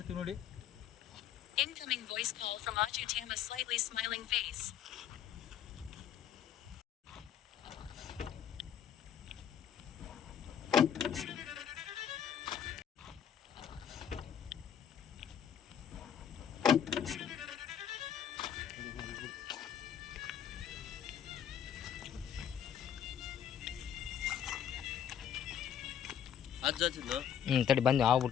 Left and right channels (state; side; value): quieter; right; 9.1 dB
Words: ನೋಡಿ. Incoming voice call from Ajutam, a slightly smiling face. ತಡಿ ಬಂದು ಹಾವು